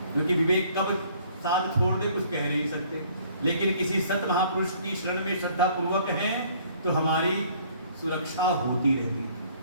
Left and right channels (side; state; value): both; inverted; correlation -0.58